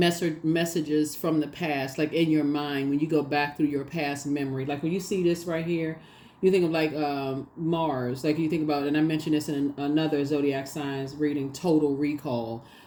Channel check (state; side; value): identical; both; correlation 1.00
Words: from the past, like in your mind, when you go back through your past memory, like when you see this right here, you think of Mars, like you think about, and I mentioned this in another Zodiac Signs reading, total recall.